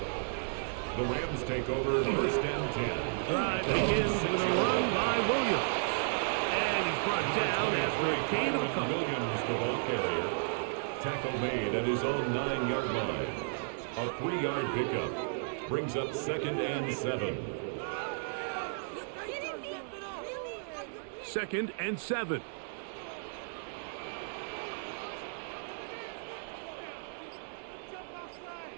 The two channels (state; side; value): silent; left; digital silence